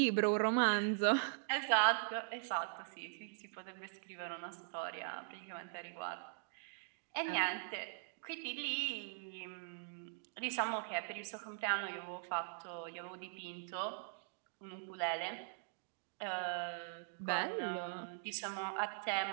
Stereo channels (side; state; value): left; silent; digital silence